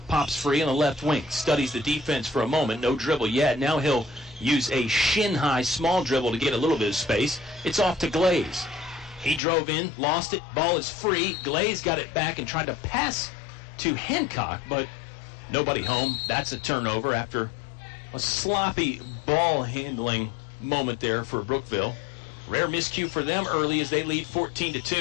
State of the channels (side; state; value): right; drops out; at 9.4 s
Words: pops free on the left wing. Studies the defense for a moment. No dribble yet. Now he'll use a shin-high small dribble to get a little bit of space. It's off to Glaze. He drove in, lost it. Ball is free. Glaze got it back and tried to pass to Hancock, but nobody home. That's a turnover after a sloppy ball handling moment there for Brookville. Rare miscue for them early as they lead